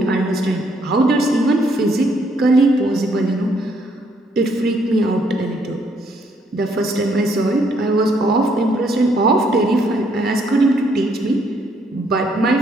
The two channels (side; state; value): both; normal; correlation 0.70